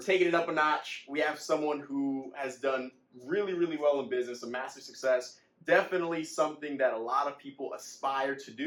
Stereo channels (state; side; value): identical; both; correlation 1.00